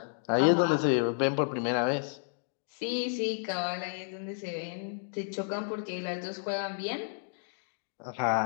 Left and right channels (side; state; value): right; silent; digital silence